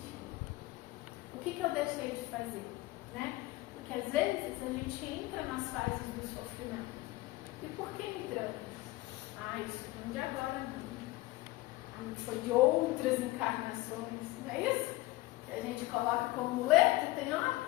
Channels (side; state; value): right; quieter; 19.1 dB